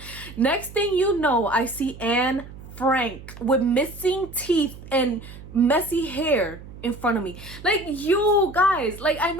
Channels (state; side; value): noise; right; hum, 16 dB below the sound